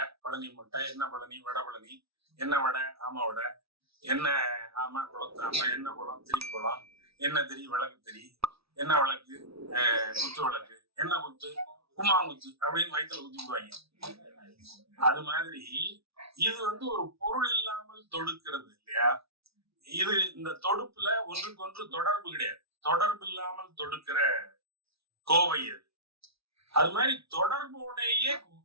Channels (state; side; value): late; left; 0.77 ms